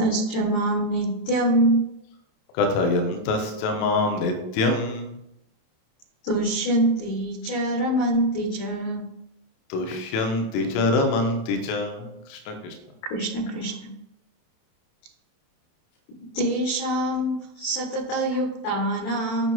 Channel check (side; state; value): right; late; 27 ms